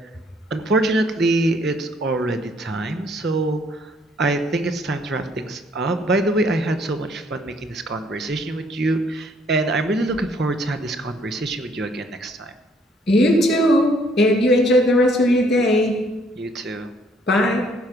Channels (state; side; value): normal; both; correlation 0.64